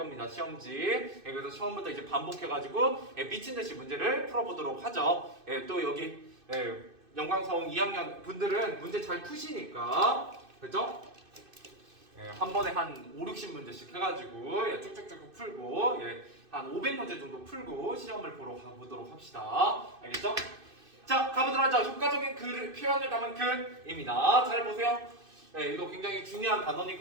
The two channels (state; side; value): late; left; 2.6 ms